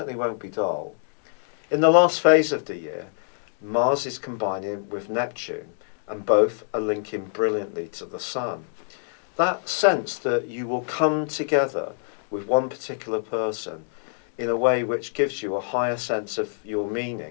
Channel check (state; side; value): silent; right; digital silence